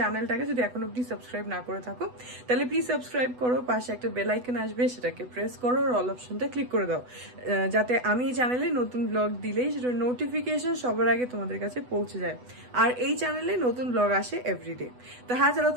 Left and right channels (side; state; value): left; late; 8.1 ms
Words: যদি এখন অব্দি সাবস্ক্রাইব না করে থাকো তাহলে প্লিজ সাবস্ক্রাইব করো। পাশে একটা বেল আইকন আসবে, সেটাকে প্রেস করো, আর অল অপশনটা ক্লিক করে দাও, যাতে আমি এই চ্যানেলে নতুন ব্লগ দিলেই সেটার নোটিফিকেশন সবার আগে তোমাদের কাছে পৌঁছে যায়। আর এই চ্যানেলে নতুন ব্লগ আসে এভরিডে। তো হ্যাঁ, চলো,